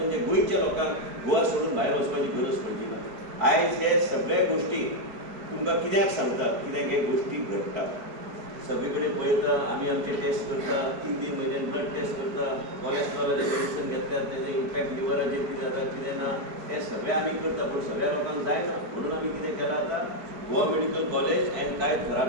गोंयच्या लोकांक गोवा सोडून भायर वचपाची गरज पडची ना. आयज हे सगळे गोष्टी तुमकां कित्याक सांगतात कित्याक हे गोष्टी घडटात. सगळीकडे पळयता आमी आमचे टेस्ट करता 3-3 म्हयने ब्लड टेस्ट करता कोलेस्ट्रॉलाचे मेडिसिन घेतल्यार तेजे इम्पॅक्ट लिव्हराचेर कितें जाता कितें ना हे सगळें आमी करता पूण सगळ्या लोकांक जायना म्हणून आमी कितें केलां आतां गोवा मेडिकल कॉलेज एंड कांय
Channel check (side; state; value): left; late; 4.7 ms